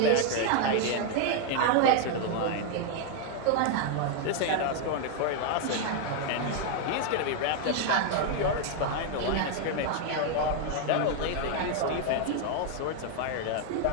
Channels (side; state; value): both; different; correlation 0.00